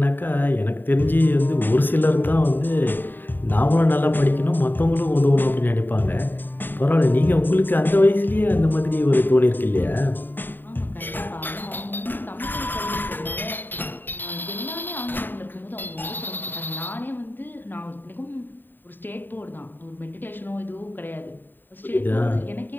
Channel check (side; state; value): right; late; 0.092 ms